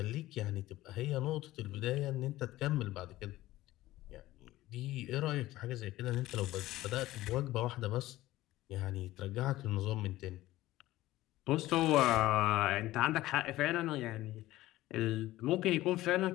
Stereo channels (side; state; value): right; quieter; 16.4 dB